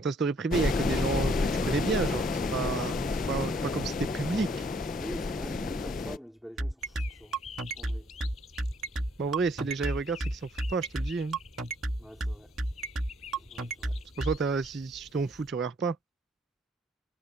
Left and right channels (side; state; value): both; normal; correlation 0.65